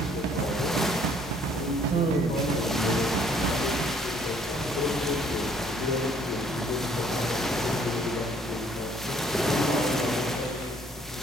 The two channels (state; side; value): normal; both; correlation 0.62